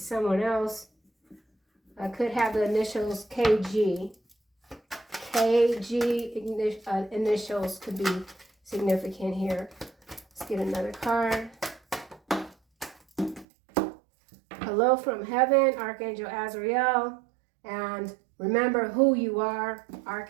someone else. Could have the initials KG. KG initials could be significant here. Let's get another card. Hello from heaven, Archangel Azrael. And remember who you are,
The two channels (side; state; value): left; drops out; at 13.5 s